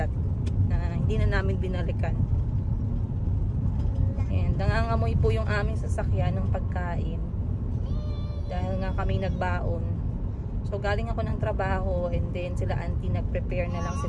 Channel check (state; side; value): identical; both; correlation 1.00